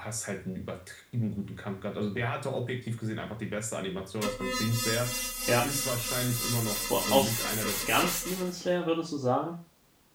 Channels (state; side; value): identical; both; correlation 1.00